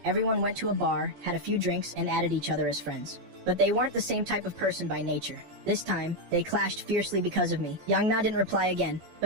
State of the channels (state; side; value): late; left; 14 ms